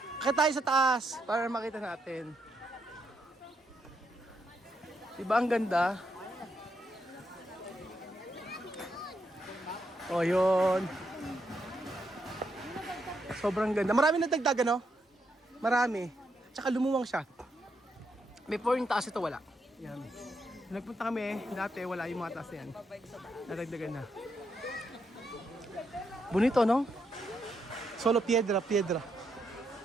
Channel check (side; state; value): both; normal; correlation 0.79